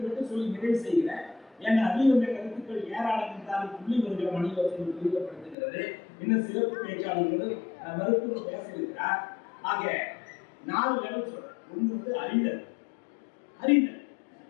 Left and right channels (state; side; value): drops out; right; at 5.6 s